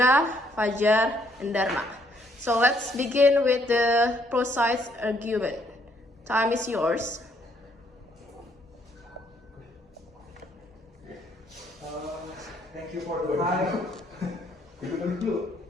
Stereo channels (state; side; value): normal; both; correlation 0.68